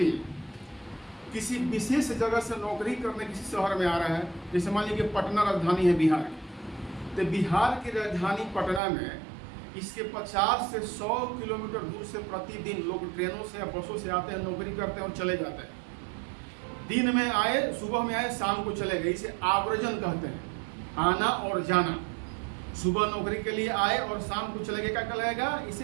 किसी विशेष जगह से नौकरी करने किसी शहर में आ रहा है। जैसे मान लीजिए पटना राजधानी है बिहार की, तो बिहार की राजधानी पटना में इसके 50 से 100 किलोमीटर दूर से प्रतिदिन लोग ट्रेनों से या बसों से आते हैं, नौकरी करते हैं और चले जाते हैं। दिन में आए, सुबह में आए, शाम को चले गए। इसे आवर्जन कहते हैं, आना और जाना। सुबह नौकरी के लिए आए और शाम को चले गए, क्या कहलाएगा?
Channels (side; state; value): left; drops out; at 8.8 s